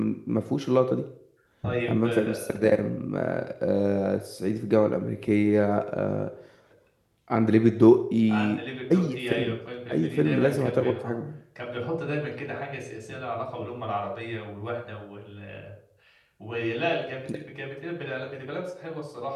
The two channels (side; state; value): both; identical; correlation 1.00